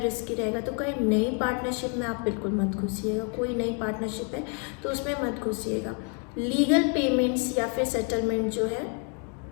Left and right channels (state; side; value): quieter; right; 39.2 dB